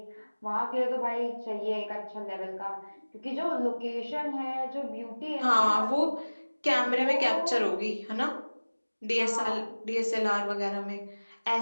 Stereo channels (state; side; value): inverted; both; correlation -1.00